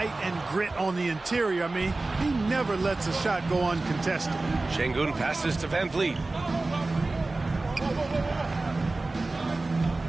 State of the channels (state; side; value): quieter; left; 3.2 dB